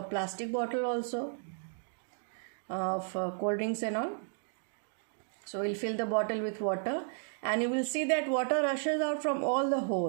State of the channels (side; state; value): left; silent; digital silence